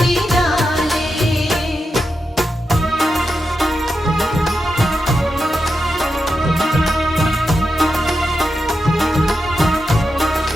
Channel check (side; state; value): both; normal; correlation 0.88